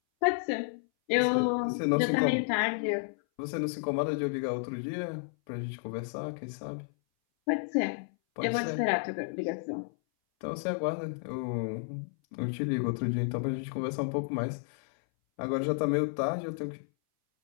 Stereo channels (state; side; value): silent; right; 57 dB below the other